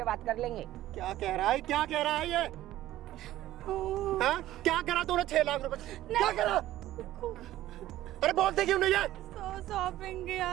बात कर लेंगे। क्या कह रहा है, क्या कह रहा है ये? हाँ? क्या करा तूने 6 लाख रुपए? क्या करा? अरे बोलते क्यों नहीं है? शॉपिंग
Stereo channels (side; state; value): left; quieter; 14.5 dB